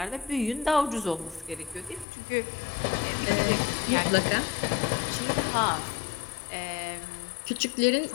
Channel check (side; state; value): right; drops out; at 2.1 s